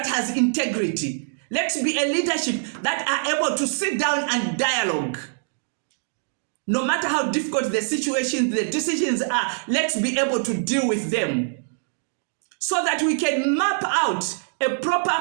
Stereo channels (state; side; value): silent; left; digital silence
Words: has integrity. Let's be a leadership that are able to sit down and dialogue. No matter how difficult the situation, the decisions are, let's be able to deal with them so that we can map out a